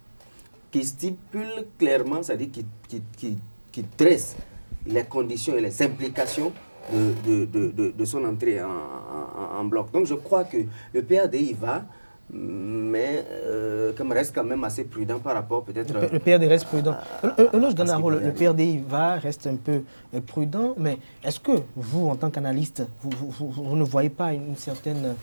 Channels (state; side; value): inverted; both; correlation -1.00